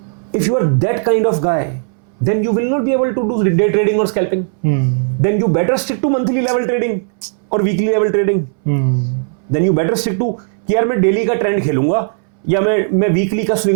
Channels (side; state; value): left; silent; 65 dB below the other